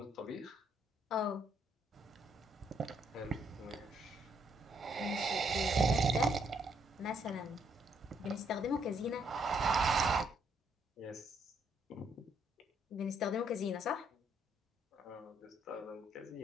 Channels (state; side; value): normal; both; correlation 0.72